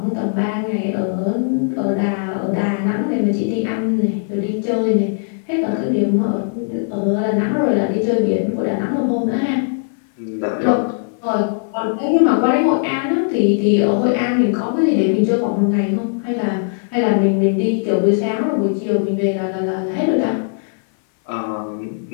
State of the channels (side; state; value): right; silent; 57 dB below the other